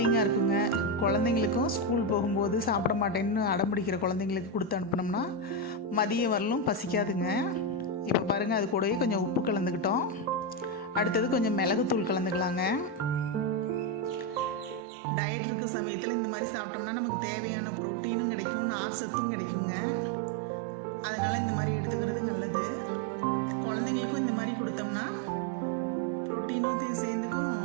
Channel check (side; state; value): left; drops out; at 14.9 s